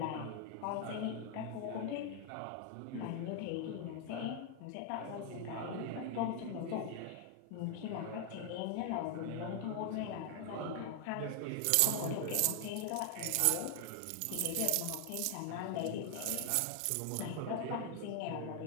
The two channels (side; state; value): both; different; correlation 0.00